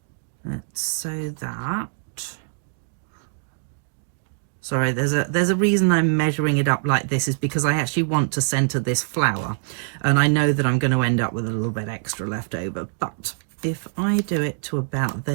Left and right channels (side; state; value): left; silent; digital silence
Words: let's say that. Sorry, there's a reason I'm measuring it up like this, is because I actually want to center this flower, and I know that I'm going to end up with a little bit extra left over. But if I do it to about